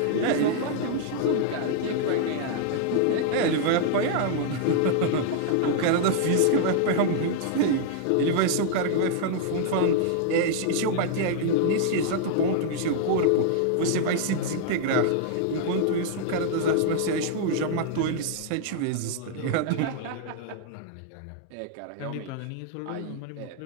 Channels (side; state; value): both; different; correlation -0.01